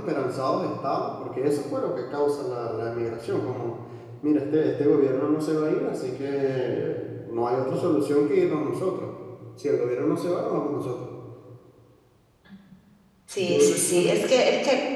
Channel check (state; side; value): identical; both; correlation 1.00